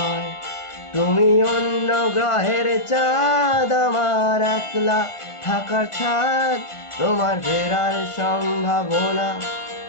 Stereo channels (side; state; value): right; late; 1.5 ms